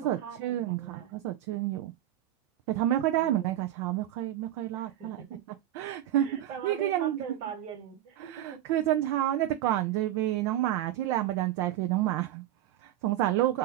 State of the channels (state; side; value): quieter; left; 12.7 dB